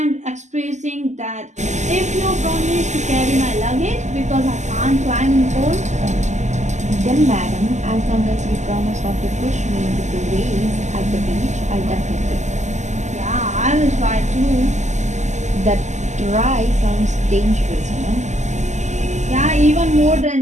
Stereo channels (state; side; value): late; left; 0.34 ms